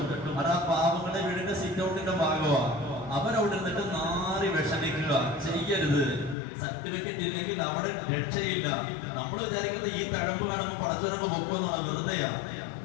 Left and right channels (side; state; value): right; drops out; at 6.4 s